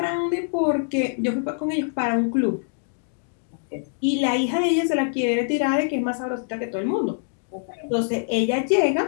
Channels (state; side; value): silent; right; digital silence